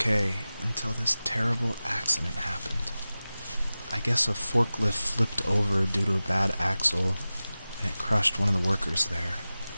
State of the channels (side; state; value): both; inverted; correlation -0.96